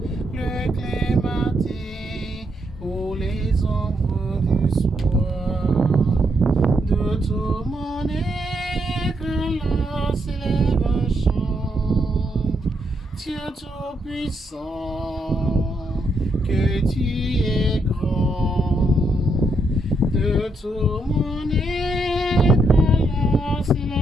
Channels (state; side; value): normal; both; correlation 0.78